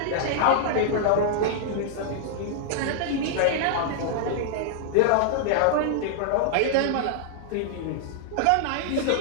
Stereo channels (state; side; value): different; both; correlation -0.01